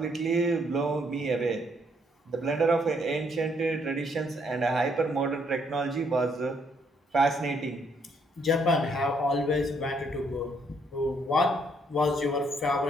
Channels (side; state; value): both; normal; correlation 0.70